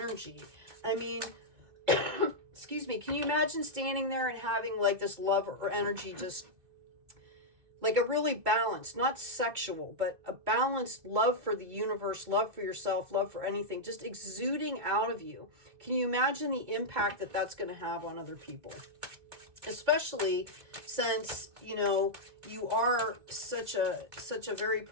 I mean, excuse me, can you imagine standing there and having like this love or energy, just like a really balanced, not sexual, but a balanced love for the universe, love for yourself, love for anything, just exuding out of you. Can you imagine the impact that that's going to have on other people? Especially since, you know, you are such a very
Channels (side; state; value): left; late; 2.2 ms